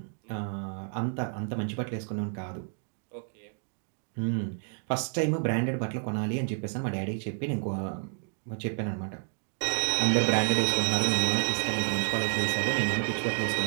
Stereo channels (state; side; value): silent; left; 58 dB below the other